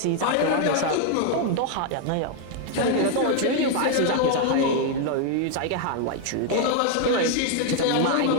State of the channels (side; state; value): both; different; correlation 0.00